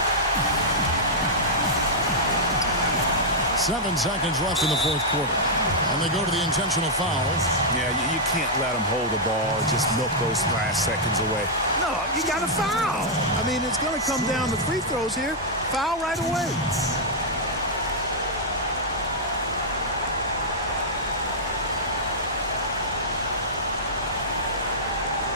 Seven seconds left in the fourth quarter. And they go to the intentional foul. Yeah, you can't let them hold the ball and just milk those last seconds away. No, you got to foul. I mean, it's going to come down to free throws here. Foul right away.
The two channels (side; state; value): both; normal; correlation -0.07